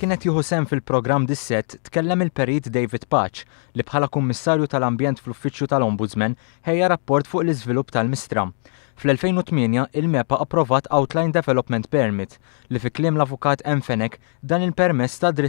jieħu sehem fil-programm dis-sett, tkellem il-Perit David Patch li bħala Kummissarju tal-Ambjent fl-Uffiċċju tal-Ombudsman ħejja rapport fuq l-iżvilupp tal-Mistra. Fl-2008 il-MEPA approvat Outline Development Permit li fi kliem l-avukat Fenek dan il-permess ta'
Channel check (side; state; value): right; silent; 59 dB below the other